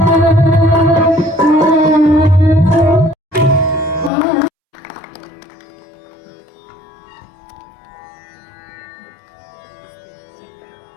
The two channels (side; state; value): right; drops out; at 4.1 s